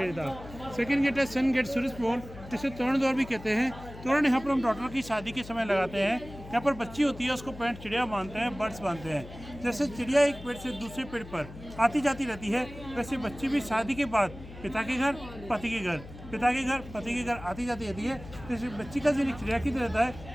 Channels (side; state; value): left; noise; hum, 15 dB below the sound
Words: था। सेकंड गेट है सन गेट सूरज पोल, जिसे तोरण द्वार भी कहते हैं। तोरण यहाँ पर हम डॉटर की शादी के समय लगाते हैं। यहाँ पर बच्ची होती है, उसको पैंट चिड़िया बांधते हैं, बर्ड्स बांधते हैं। जैसे चिड़िया एक पेड़ से दूसरे पेड़ पर आती जाती रहती है, वैसे बच्ची भी शादी के बाद पिता के घर, पति के घर, पिता के घर, पति के घर आती जाती रहती है। जैसे बच्ची का जो चिड़िया की रहता